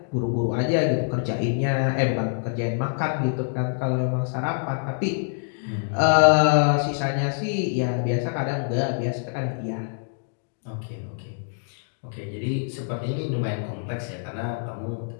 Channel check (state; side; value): silent; right; digital silence